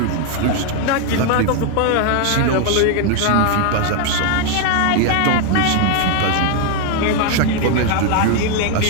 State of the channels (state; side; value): different; both; correlation 0.00